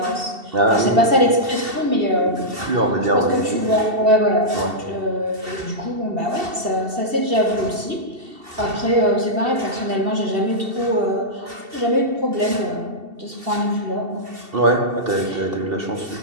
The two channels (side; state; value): left; late; 2.7 ms